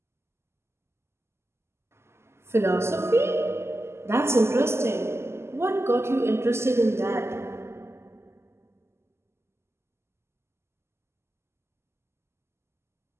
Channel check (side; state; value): left; late; 0.12 ms